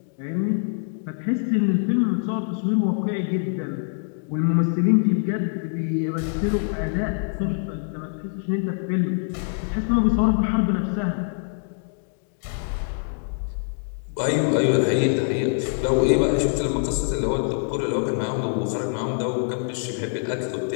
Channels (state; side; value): silent; right; digital silence